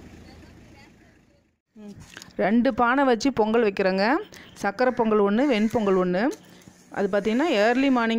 ரெண்டு பானை வச்சு பொங்கல் வைக்கிறோங்க. சக்கரை பொங்கல் ஒன்று, வெண் பொங்கல் ஒன்று. அது பார்த்திங்கன்னா ஏர்லி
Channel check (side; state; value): both; identical; correlation 1.00